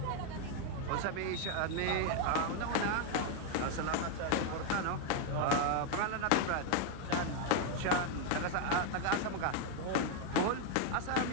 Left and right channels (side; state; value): both; different; correlation 0.00